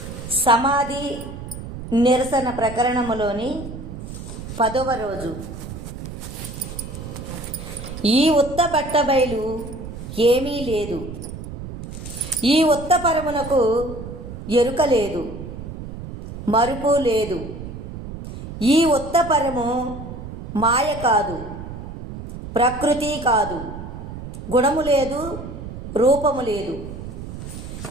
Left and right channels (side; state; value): right; noise; rumble, 10 dB below the sound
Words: సమాధి నిరసన ప్రకరణములోని 10వ రోజు. ఈ ఉత్త బట్టబయలు ఏమీ లేదు, ఈ ఉత్త పరమునకు ఎరుక లేదు, మరుపు లేదు. ఈ ఉత్త పరము మాయ కాదు, ప్రకృతి కాదు, గుణము లేదు, రూపము లేదు.